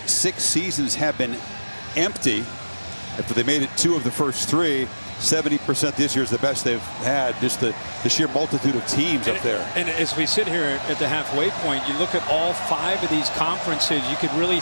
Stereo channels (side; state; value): both; inverted; correlation -1.00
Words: 6 seasons have been empty. After they made it 2 of the first 3, 70% this year is the best they've had. Just the sheer multitude of teams up there. And as we sit here at the halfway point, you look at all 5 of these conferences, you could really